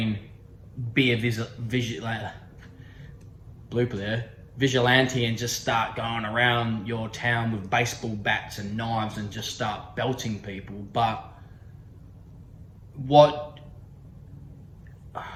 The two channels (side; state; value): both; identical; correlation 1.00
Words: be a blooper there, vigilante and just start going around your town with baseball bats and knives and just start belting people. But what